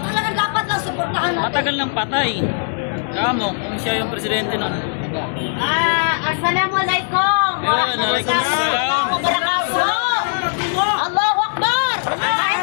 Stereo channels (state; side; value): silent; right; 66 dB below the other